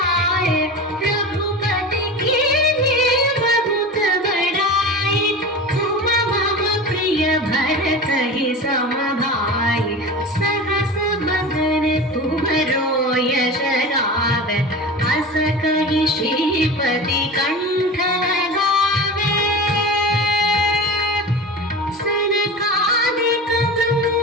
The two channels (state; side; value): normal; both; correlation 0.31